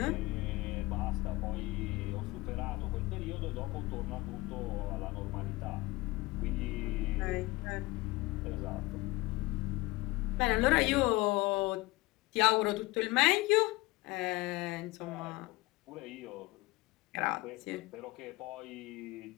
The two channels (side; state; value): right; quieter; 21.0 dB